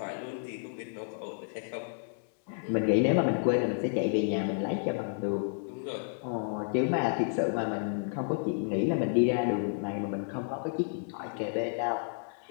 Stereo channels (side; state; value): right; silent; digital silence